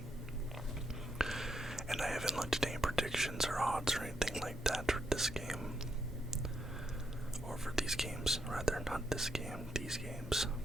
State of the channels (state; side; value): normal; both; correlation 0.79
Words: And I haven't looked at any predictions or odds or anything like that for this game. Or for these games, rather, not this game, these games.